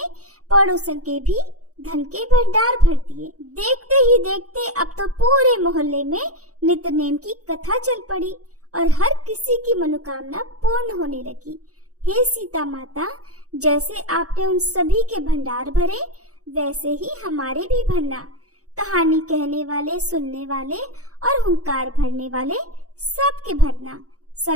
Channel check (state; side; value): late; left; 0.66 ms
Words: पड़ोसन के भी धन के भंडार भर दिए। देखते ही देखते अब तो पूरे मोहल्ले में नित्य नेम की कथा चल पड़ी और हर किसी की मनोकामना पूर्ण होने लगी। हे सीता माता, जैसे आपने उन सभी के भंडार भरे वैसे ही हमारे भी भरना। कहानी कहने वाले, सुनने वाले और हुंकार भरने वाले सबके भरना।